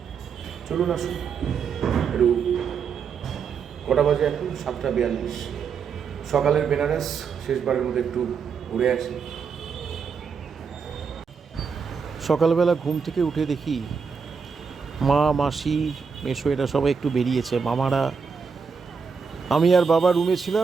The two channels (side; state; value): left; quieter; 5.9 dB